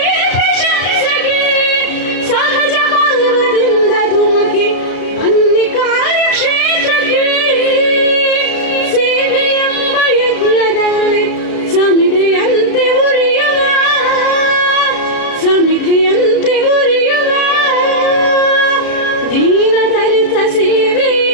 ಪ್ರಶಂಸೆಗೆ ಸಹಜ ಭಾವದಿಂದ ಧುಮುಕಿ ಬನ್ನಿ ಕಾರ್ಯಕ್ಷೇತ್ರಕ್ಕೆ ಸೇವೆ ಎಂಬ ಯಜ್ಞದಲ್ಲಿ ಸಮಿತಿಯಂತೆ ಉರಿಯುವ ಸಮಿತಿಯಂತೆ ಉರಿಯುವ ದೀನ ದಲಿತ ಸೇವೆ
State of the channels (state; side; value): late; right; 33 ms